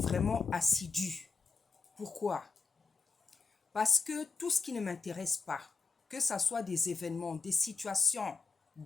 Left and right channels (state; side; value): quieter; right; 4.6 dB